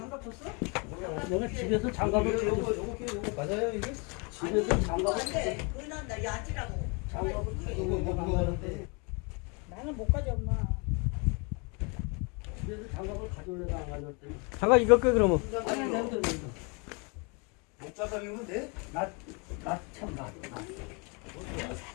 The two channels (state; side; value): quieter; right; 32.2 dB